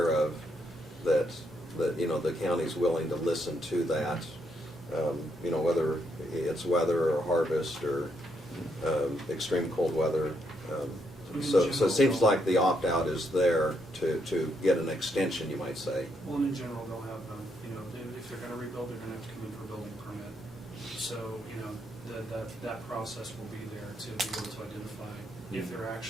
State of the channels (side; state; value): both; normal; correlation 0.76